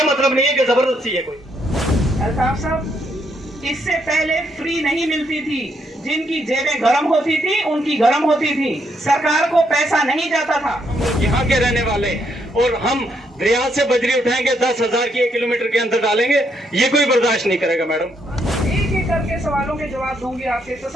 मतलब नहीं है कि जबरदस्ती है कोई। अल्ताफ साहब, इससे पहले फ्री नहीं मिलती थी, जिनकी जेबें गर्म होती थी उनकी गर्म होती थी, सरकार को पैसा नहीं जाता था। यहाँ के रहने वाले और हम दरिया से बजरी उठाएंगे 10,000 की 1 किलोमीटर के अंदर डालेंगे, ये कोई बर्दाश्त नहीं करेगा मैडम। एक एक करके सवालों के जवाब दूंगी आपसे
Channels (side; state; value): both; normal; correlation 0.75